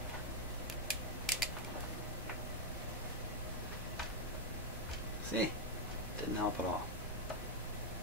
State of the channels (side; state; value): both; normal; correlation 0.01